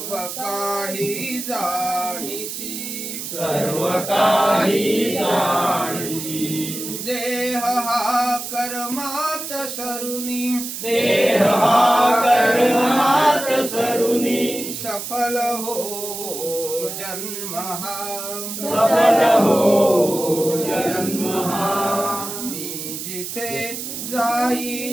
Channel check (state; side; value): noise; right; hiss, 7 dB below the sound